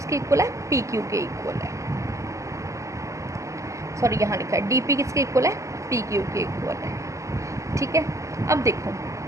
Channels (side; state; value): left; late; 0.15 ms